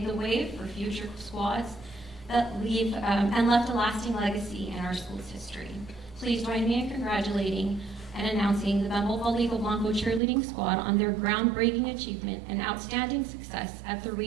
the way for future squads that leave and left a lasting legacy in our school's history. Please join me in congratulating and announcing the Bembo Palico Blanco cheerleading squad on their groundbreaking achievement and outstanding success at the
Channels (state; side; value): drops out; left; at 10.2 s